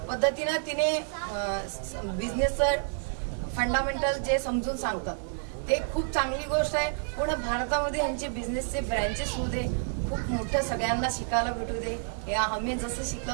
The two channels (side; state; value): left; silent; digital silence